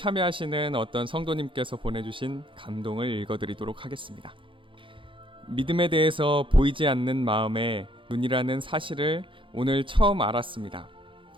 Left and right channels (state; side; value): late; left; 0.25 ms